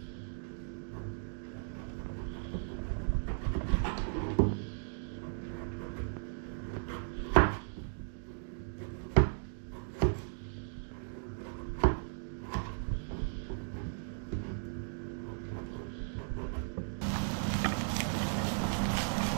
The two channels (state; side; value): silent; left; digital silence